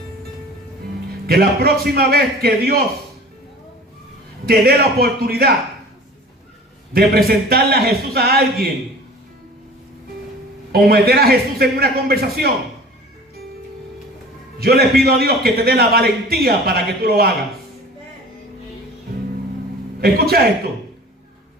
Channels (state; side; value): normal; both; correlation 0.43